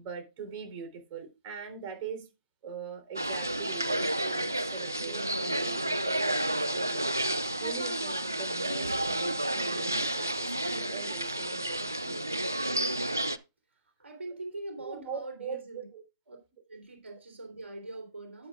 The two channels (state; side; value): inverted; both; correlation -0.72